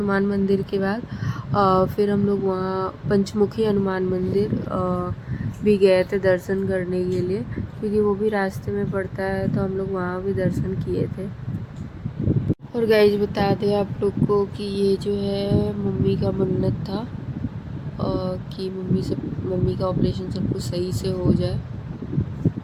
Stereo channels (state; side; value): identical; both; correlation 1.00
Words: मंदिर के बाद फिर हम लोग वहाँ पंचमुखी हनुमान मंदिर भी गए थे दर्शन करने के लिए, क्योंकि वो भी रास्ते में पड़ता है, तो हम लोग वहाँ भी दर्शन किए थे। और गाइस बता दें आप लोग को कि ये जो है मम्मी का मन्नत था कि मम्मी का ऑपरेशन सब कुछ सही से हो जाए,